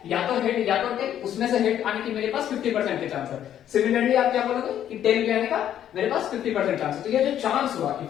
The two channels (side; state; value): right; quieter; 10.6 dB